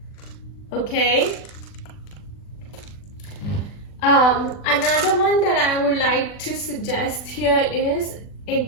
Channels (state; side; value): late; right; 40 ms